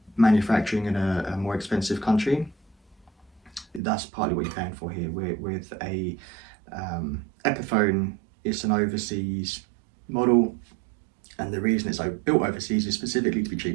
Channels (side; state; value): left; drops out; at 3.8 s